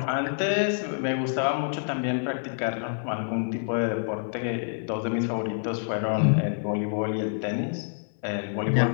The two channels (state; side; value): silent; right; 60 dB below the other